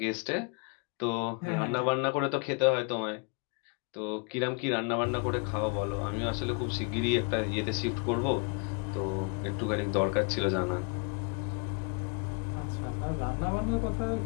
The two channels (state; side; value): quieter; right; 34.3 dB